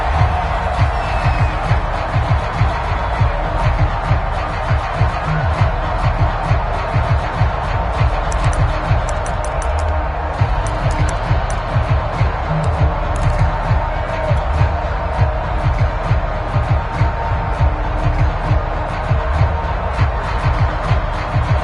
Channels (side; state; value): both; identical; correlation 1.00